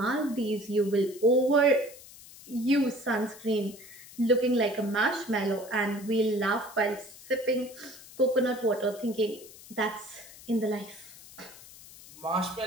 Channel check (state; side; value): noise; left; hiss, 19 dB below the sound